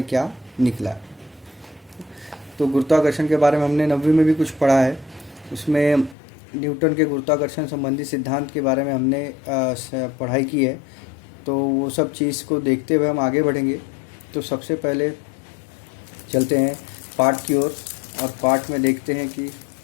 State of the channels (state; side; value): drops out; right; at 6.2 s